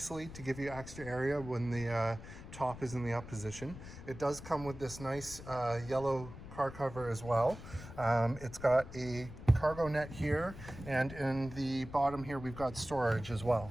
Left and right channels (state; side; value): noise; left; rumble, 13 dB below the sound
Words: to give you extra area when the top is in the up position. It does come with this nice yellow car cover as well. It's got a cargo net here, and in the bottom here we've got storage as well.